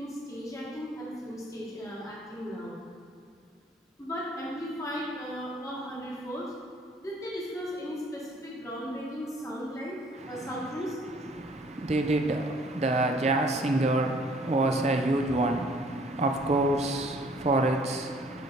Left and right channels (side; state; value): both; normal; correlation 0.58